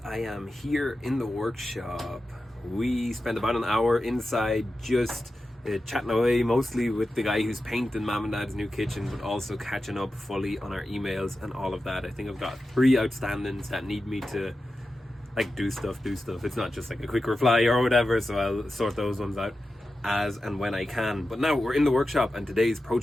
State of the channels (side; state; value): both; normal; correlation 0.92